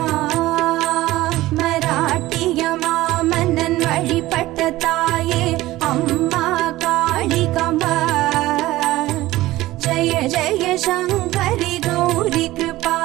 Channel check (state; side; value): quieter; left; 17.1 dB